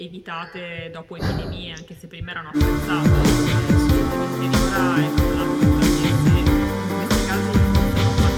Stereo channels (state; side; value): identical; both; correlation 1.00